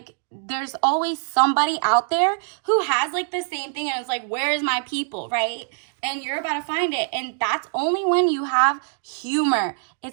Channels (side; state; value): left; silent; digital silence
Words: there's always somebody out there who has like the same thing, and it's like, where is my people, right? And you're about to find it. And that's only when you have humor.